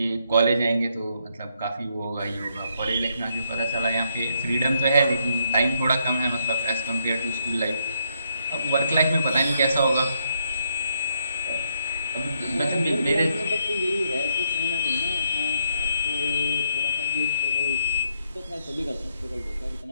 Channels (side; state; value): both; inverted; correlation -0.75